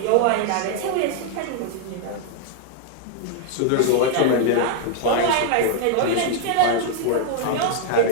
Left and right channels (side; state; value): both; different; correlation 0.00